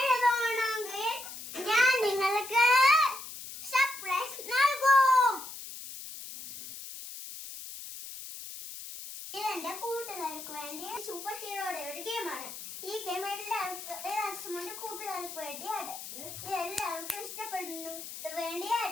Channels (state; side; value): noise; left; hiss, 11 dB below the sound